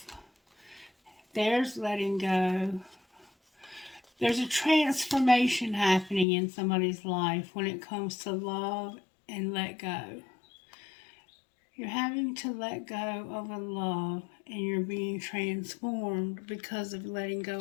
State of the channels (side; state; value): right; drops out; at 6.2 s